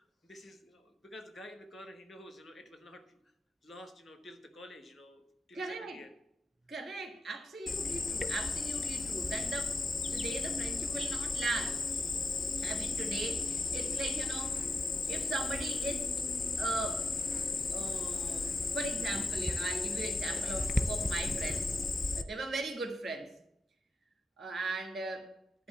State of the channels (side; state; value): both; normal; correlation 0.87